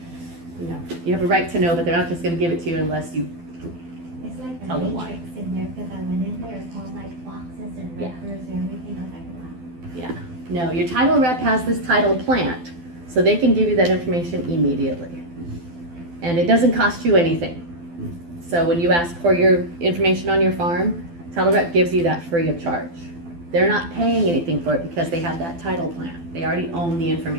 You know, you have a right to know, but they're not just gonna give it to you unless you, It's like Tell a them why. matrix in there, cause I went in there, it's all like boxes and Yeah. records and everything, I was like, wow. no, your title rep has this title plant, so they can give you that information immediately. And it doesn't cost you anything. So when you ask for your information on your farm, title rep gives you that free of charge. They're not paying anything for it because they have that title plant. They already own the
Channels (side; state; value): left; late; 12 ms